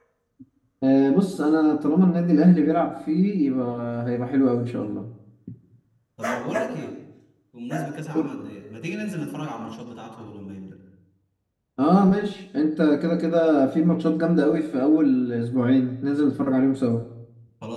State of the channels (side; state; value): both; identical; correlation 1.00